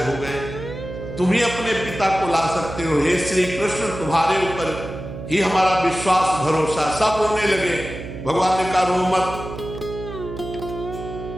हो गए, तुम ही अपने पिता को ला सकते हो, हे श्री कृष्ण तुम्हारे ऊपर ही हमारा विश्वास भरोसा। सब रोने लगे। भगवान ने कहा रो मत,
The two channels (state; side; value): noise; right; hum, 10 dB below the sound